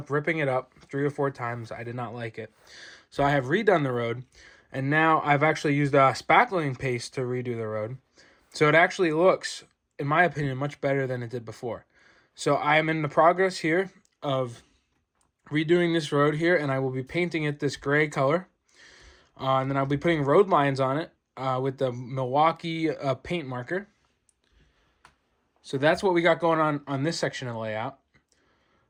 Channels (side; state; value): both; identical; correlation 1.00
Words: ripping it up 3 or 4 times. I did not like it. So I have redone the road, and now I've actually used a spackling paste to redo the road. So it actually looks, in my opinion, much better than it did before. So I am in the progress here of redoing this road here, and I will be painting it this gray color. And then I'll be putting road lines on it with the Milwaukee paint marker. So that's what we got going on this section of the layout.